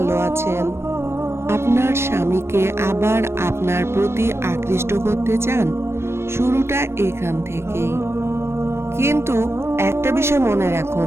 আছেন। আপনার স্বামীকে আবার আপনার প্রতি আকৃষ্ট করতে চান, শুরুটা এখান থেকেই। কিন্তু একটা বিষয় মনে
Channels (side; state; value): left; late; 0.12 ms